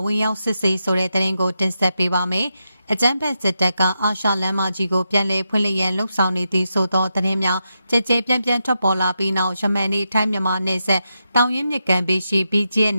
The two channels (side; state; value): both; inverted; correlation -0.86